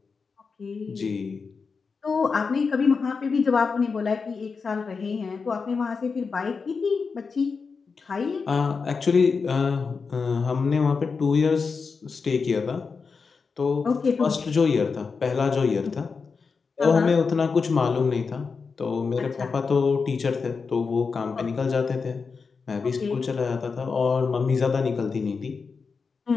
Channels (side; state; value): right; quieter; 5.0 dB